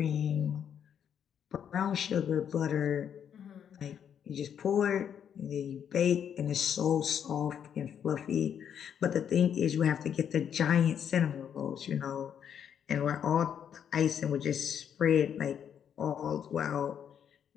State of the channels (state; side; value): quieter; right; 8.5 dB